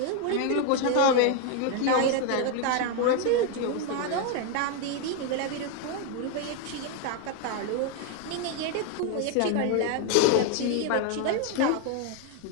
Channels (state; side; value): different; both; correlation 0.01